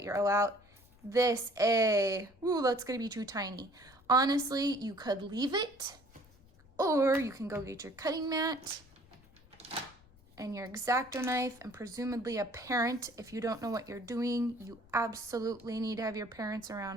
your O out. This A. Ooh, that's going to be too tiny. Honestly, you could leave it. Or you can go get your cutting mat and your X-Acto knife, and presumably a parent. If you don't know what you're doing, you absolutely need to have your parents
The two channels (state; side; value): noise; left; rumble, 27 dB below the sound